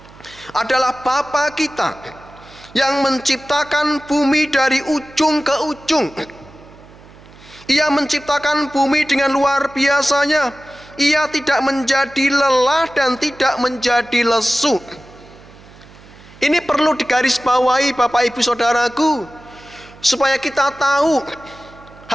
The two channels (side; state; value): right; noise; hum, 22 dB below the sound